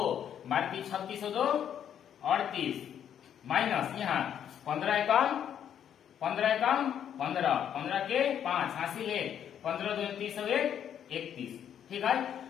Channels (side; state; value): right; quieter; 9.3 dB